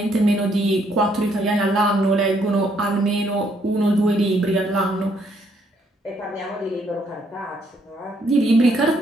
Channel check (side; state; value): both; normal; correlation 0.70